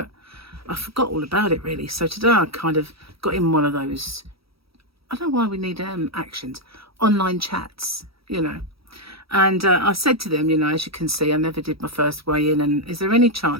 I forgot all about it really. So today I kind of got in one of those, I don't know why we need actions, online chats, you know. And I said to them, you know, as you can see, I never did my first weigh in, and is there any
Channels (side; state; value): left; late; 0.76 ms